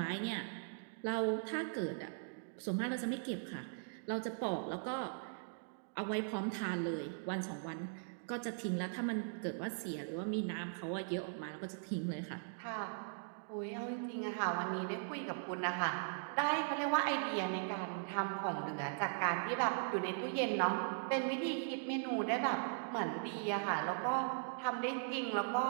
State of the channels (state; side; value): silent; left; digital silence